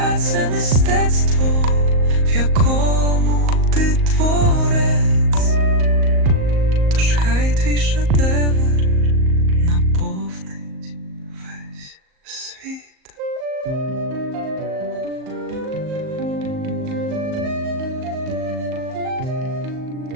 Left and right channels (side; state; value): left; late; 38 ms